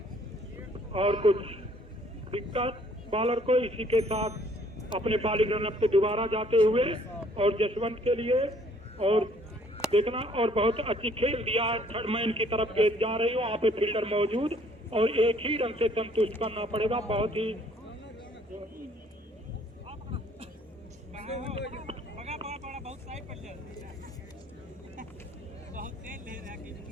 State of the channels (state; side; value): normal; both; correlation 0.61